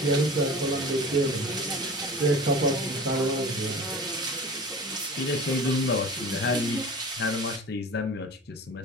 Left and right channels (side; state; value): both; normal; correlation 0.37